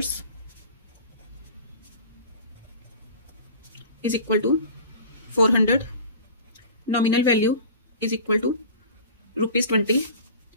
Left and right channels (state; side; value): inverted; both; correlation -0.40